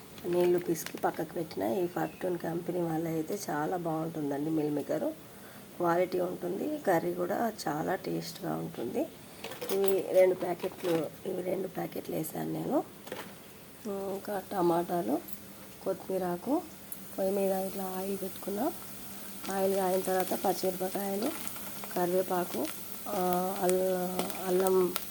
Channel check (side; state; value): both; identical; correlation 1.00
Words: నీళ్లు పిసికి పక్కకు పెట్టిన. ఈ ఫార్టూన్ కంపెనీ వాళ్ళ అయితే చాలా బాగుంటుందండి. మిల్ మేకరు క్వాలిటీ ఉంటుంది, కర్రీ కూడా చాలా టేస్ట్గా ఉంటుంది. ఇవి రెండు ప్యాకెట్లు వేసాను నేను. ఇంకా టమాటాలు, కొత్తిమీరాకు, పొయ్యి మీద ఇట్లా ఆయిల్ పెట్టుకున్నా. ఆయిల్ కాయిన తర్వాత పచ్చిమిరపకాయలు, కరివేపాకు, అల్లం